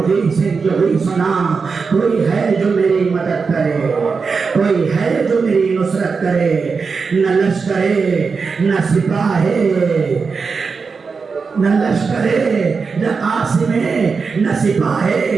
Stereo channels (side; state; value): left; quieter; 5.0 dB